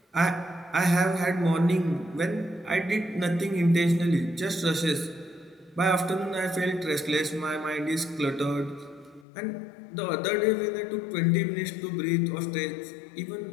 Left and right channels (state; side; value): drops out; right; at 9.2 s